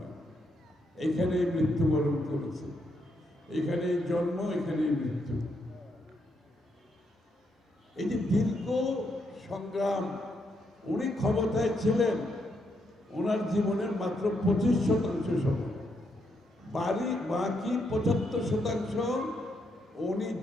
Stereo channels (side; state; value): both; normal; correlation 0.78